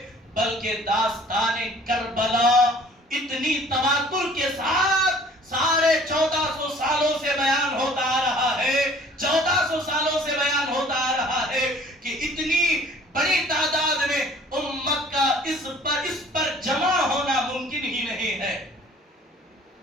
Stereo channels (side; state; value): both; normal; correlation 0.52